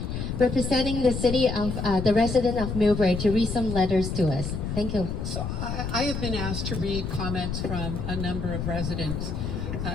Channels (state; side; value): noise; left; rumble, 4 dB below the sound